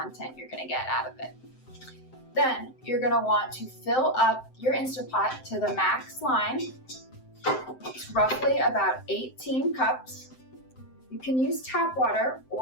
you're going to get out of it. Then you're going to want to fill up your Instant Pot to the max line. It's roughly about 18 cups. You can use tap water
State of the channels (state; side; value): late; right; 7.7 ms